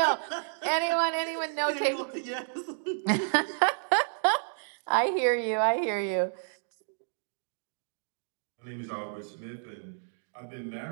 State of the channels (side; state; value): left; silent; digital silence